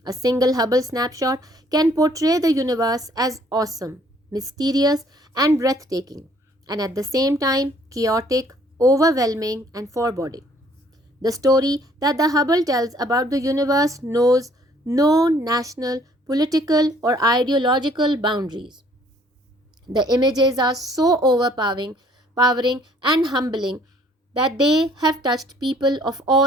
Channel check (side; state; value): both; normal; correlation 0.60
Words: A single Hubble snapshot can portray the universe as awesome, mysterious, and breathtaking, and at the same time chaotic, overwhelming, and foreboding. The story that the Hubble tells about the universe knows no national, political, or ideological boundaries. The images are so powering and humbling that they have touched people of